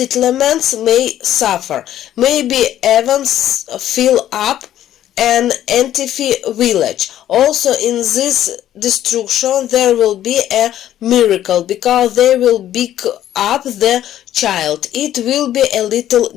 may suffer, maybe even fill up an Antifi village. Also in this destruction there will be a miracle because they will pick up the child. It will be a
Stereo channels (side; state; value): right; quieter; 12.0 dB